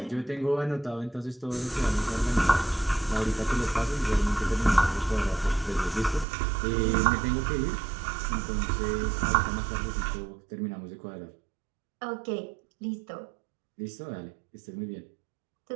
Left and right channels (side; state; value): left; drops out; at 6.2 s